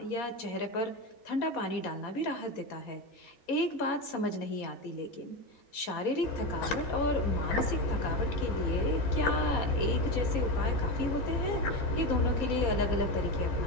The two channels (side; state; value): right; late; 4.2 ms